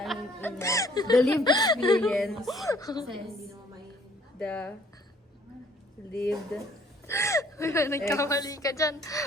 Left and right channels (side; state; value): both; normal; correlation 0.59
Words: ina. The lived experience. The lived Nagkamali ka dyan.